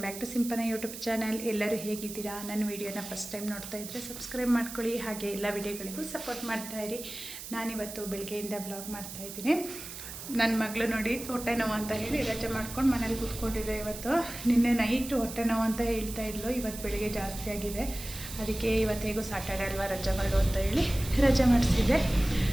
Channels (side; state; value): right; noise; hiss, 11 dB below the sound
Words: back to Simpana YouTube channel. ಎಲ್ಲರೂ ಹೇಗಿದ್ದೀರಾ? ನನ್ನ ವೀಡಿಯೋನ ಫಸ್ಟ್ ಟೈಮ್ ನೋಡ್ತಾ ಇದ್ದರೆ ಸಬ್ಸ್ಕ್ರೈಬ್ ಮಾಡ್ಕೊಳ್ಳಿ, ಹಾಗೆ ಎಲ್ಲ ವೀಡಿಯೋಗಳಿಗೂ ಸಪೋರ್ಟ್ ಮಾಡ್ತಾಯಿರಿ. ನಾನಿವತ್ತು ಬೆಳಗ್ಗೆಯಿಂದ ಬ್ಲಾಗ್ ಮಾಡ್ತಾಯಿದ್ದೀನಿ. ನನ್ನ ಮಗಳು ನೋಡಿ ಹೊಟ್ಟೆ ನೋವು ಅಂತ ಹೇಳಿ ರಜೆ ಮಾಡ್ಕೊಂಡು ಮನೇಲಿ ಕೂತ್ಕೊಂಡಿದ್ದೆ. ಇವತ್ತು ನಿನ್ನೆ ನೈಟು ಹೊಟ್ಟೆ ನೋವು ಅಂತ ಹೇಳ್ತಾ ಇದ್ಲು, ಇವತ್ತು ಬೆಳಿಗ್ಗೆ ಜಾಸ್ತಿ ಆಗಿದೆ. ಅದಕ್ಕೆ ಇವತ್ತೇಗೂ ಸಾಟರ್ಡೆ ಅಲ್ವಾ, ರಜೆ ಮಾಡು ಅಂತ ಹೇಳಿ ರಜೆ ಮಾಡಿಸಿದ್ದೆ.